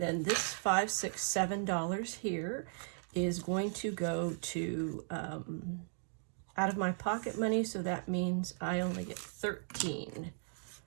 then this $5, $6, $7 here is going to go to out of my pocket money, so that means I only get 13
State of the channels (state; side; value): silent; left; digital silence